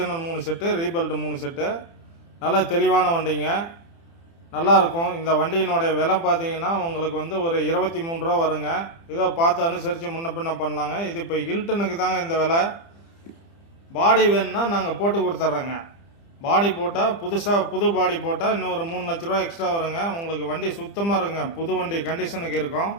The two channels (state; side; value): late; right; 30 ms